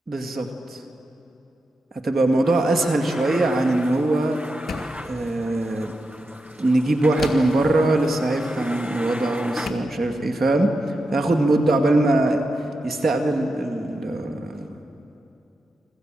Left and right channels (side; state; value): both; normal; correlation 0.88